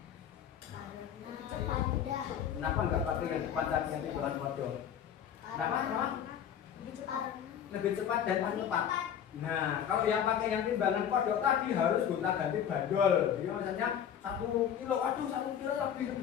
Karena cepat mudah. Kenapa enggak pakai yang cepat tadi yang timbangan kodok? Kenapa? Lebih cepat. Lebih cepat dan paling tepat. Nah, kalau yang pakai yang timbangan kodok tadi harus gonta-ganti bandol. Jadi misalnya 1 kilo, aduh 1 kilo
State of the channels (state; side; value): quieter; right; 9.0 dB